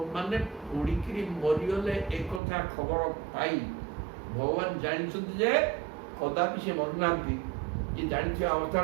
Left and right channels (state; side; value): drops out; left; at 2.4 s